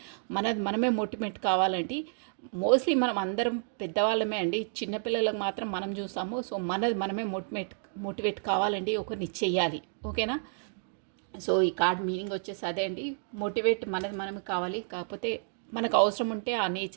మనమే మోటివేట్ కావాలండి. మోస్ట్లీ మనం అందరం పెద్దవాళ్ళమే అండి, చిన్నపిల్లలకు మాత్రం మనం చూస్తాము. సో మనమే మోటివేట్ కావాలండి, ఒకరిని చెయ్యాలి. ఓకేనా? సో ఈ కార్డ్ మీనింగ్ వచ్చేసి అదే అండి, మోటివేట్ మనమే కావాలి. కాకపోతే మనకు అవసరం ఉంటే ఆ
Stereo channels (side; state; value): left; silent; digital silence